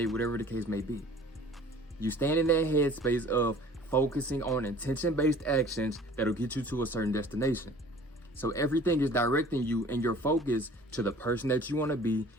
whatever the case may be. You stand in that headspace of focusing on intention-based actions that'll get you to a certain destination. So everything is directing you and your focus to the person that you want to be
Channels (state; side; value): normal; both; correlation 0.49